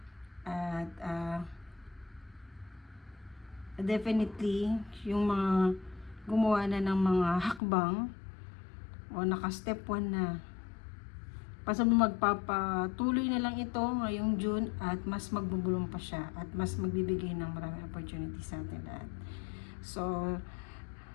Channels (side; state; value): right; drops out; at 7.6 s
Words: At definitely, yung mga gumawa na ng mga hakbang o naka-step 1 na, magpapatuloy na lang ito ngayong June at mas magbubulong pa siya at mas magbibigay ng maraming opportunity sa atin lahat. So,